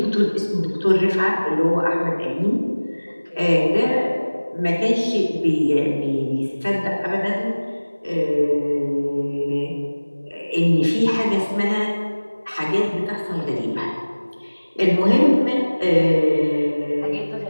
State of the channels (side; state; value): both; inverted; correlation -1.00